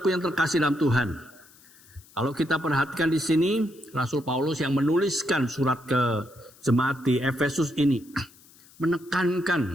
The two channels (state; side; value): noise; left; hiss, 26 dB below the sound